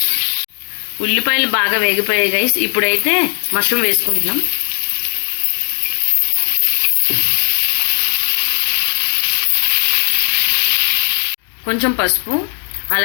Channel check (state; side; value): silent; right; digital silence